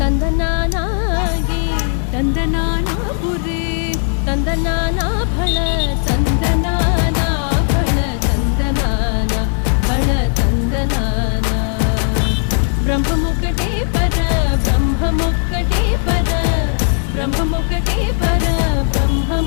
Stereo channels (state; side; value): silent; right; 56 dB below the other